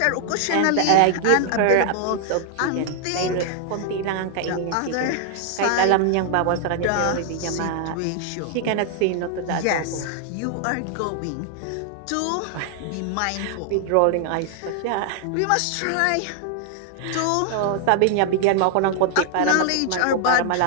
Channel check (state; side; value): different; both; correlation 0.00